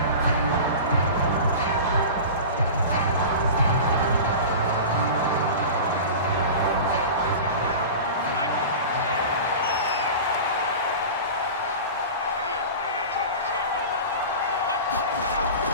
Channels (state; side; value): inverted; both; correlation -0.32